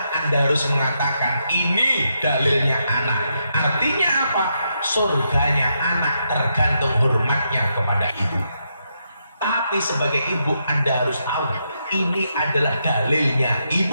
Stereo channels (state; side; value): inverted; both; correlation -0.81